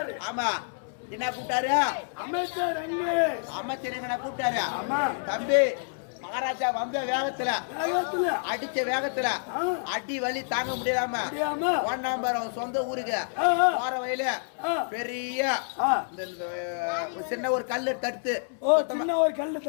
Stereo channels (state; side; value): silent; right; 59 dB below the other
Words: ஆமா என்ன கூப்பிட்டாரு அமைச்சர் அமைச்சர் என்ன கூப்பிட்டாரு. ஆமா தம்பி மகாராஜா வந்த வேகத்துல அடிச்ச வேகத்துல அடி வலி தாங்க முடியாம ஒன்னாம்பர் அவன் சொந்த ஊருக்கு போற வயல பெரிய சின்ன ஒரு கல்லு தடுத்து